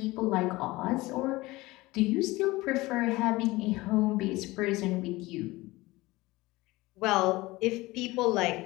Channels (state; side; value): quieter; right; 20.4 dB